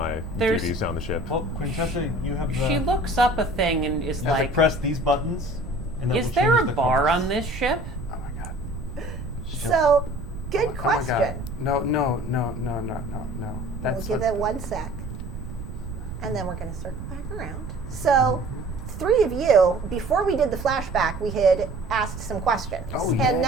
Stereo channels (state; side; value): noise; right; rumble, 9 dB below the sound